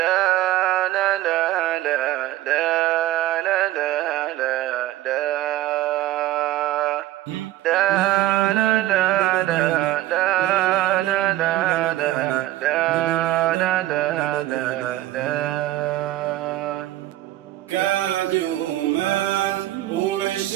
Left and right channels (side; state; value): left; quieter; 14.9 dB